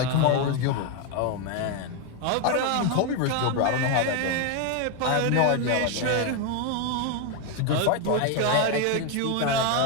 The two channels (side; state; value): both; different; correlation 0.01